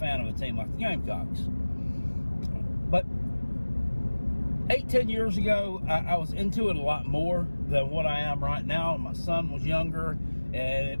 of a team like the Gamecocks. But 8-10 years ago, I was into it a lot more than what I am right now. My son was younger, and it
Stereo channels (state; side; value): inverted; both; correlation -1.00